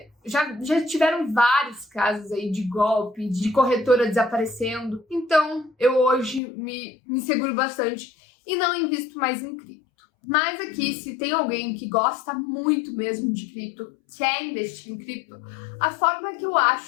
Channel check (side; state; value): right; drops out; at 6.4 s